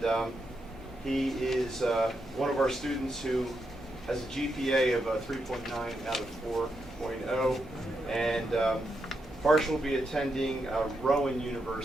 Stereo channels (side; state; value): both; normal; correlation 0.83